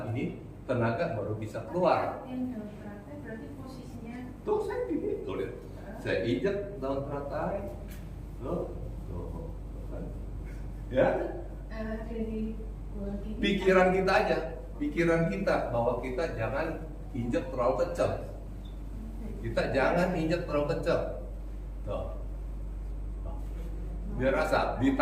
ini, tenaga baru bisa keluar. Yang daun teratai berarti posisinya. Tuh saya gini. Tuh lihat. Saya injek daun teratai. Tuh. Ya, dari pikiran kita aja, pikiran kita bahwa kita jangan injek terlalu kencang. Kita jangan injek terlalu kencang. Tuh. Biar rasa.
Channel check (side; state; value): both; identical; correlation 1.00